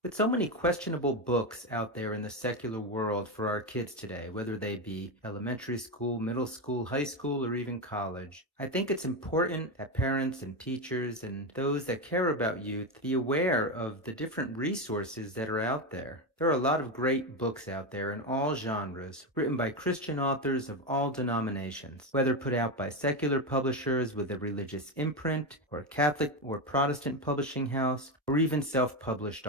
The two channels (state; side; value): normal; both; correlation 0.13